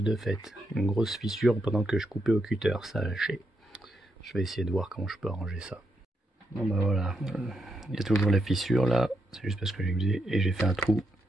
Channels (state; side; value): normal; both; correlation 0.81